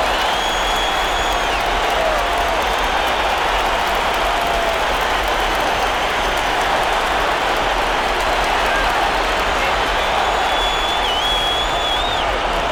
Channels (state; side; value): identical; both; correlation 1.00